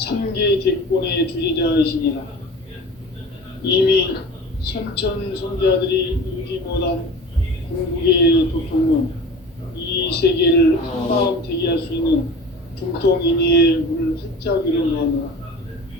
대권의 주제자이시니라. 이미 선천 성자들이 이루지 못한 궁극의 도통론, 이 세계를 한마음 대기할 수 있는 중통인의의 문을 활짝 열어놓았노라.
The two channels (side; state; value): both; normal; correlation 0.38